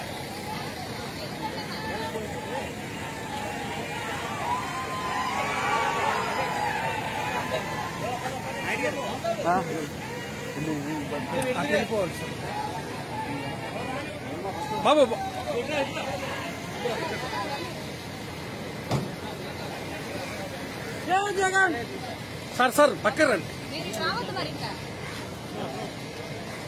बाबू Jagan sir sir Bakkar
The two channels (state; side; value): identical; both; correlation 1.00